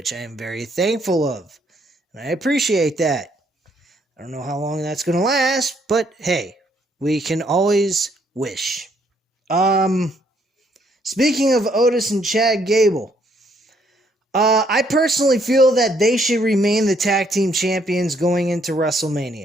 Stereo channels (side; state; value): both; normal; correlation 0.69